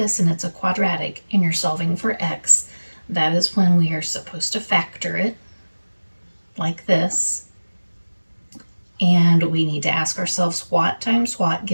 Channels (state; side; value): inverted; both; correlation -1.00